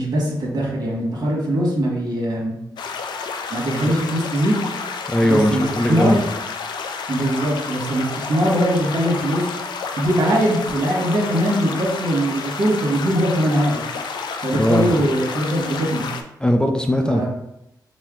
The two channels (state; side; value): normal; both; correlation 0.79